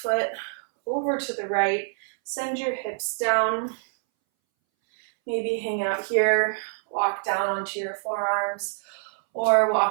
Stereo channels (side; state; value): left; silent; 61 dB below the other